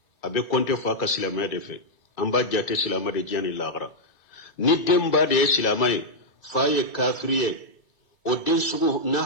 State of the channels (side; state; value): right; late; 2.3 ms